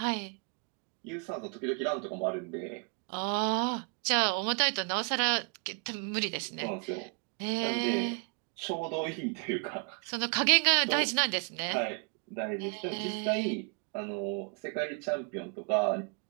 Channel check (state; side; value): quieter; left; 38.0 dB